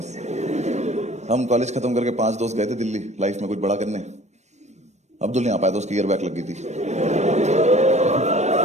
हम कॉलेज खत्म करके 5 दोस्त गए थे दिल्ली लाइफ में कुछ बड़ा करने। अब्दुल नहीं आ पाया था, उसकी ईयर बैक लग गई थी।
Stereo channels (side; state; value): left; late; 0.33 ms